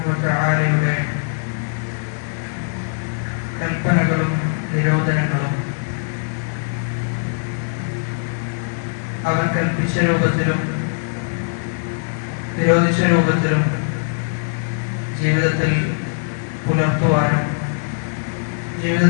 വ തആലയുടെ കൽപ്പനകളും നിരോധനങ്ങളും അവൻ കൽപ്പിച്ച രൂപത്തിലും നിരോധിച്ച രൂപത്തിലും ജീവിതത്തിൽ പുലർത്തുവാനും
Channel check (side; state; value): right; silent; 65 dB below the other